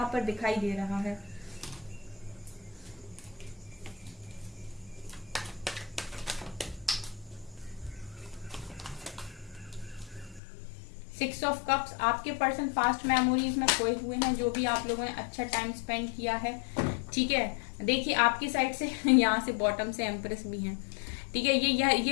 पर दिखाई दे रहा है। सिक्स ऑफ कप्स, आपके पर्सन पास्ट मेमोरीज में खोए हुए हैं, जो भी आप लोगों ने अच्छा टाइम स्पेंड किया है। ठीक है, देखिए आपकी साइड से यहाँ से बॉटम से एम्प्रेस भी हैं। ठीक है,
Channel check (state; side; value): drops out; right; at 10.4 s